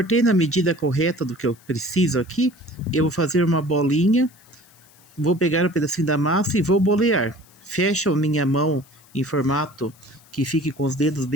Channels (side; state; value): left; noise; hiss, 28 dB below the sound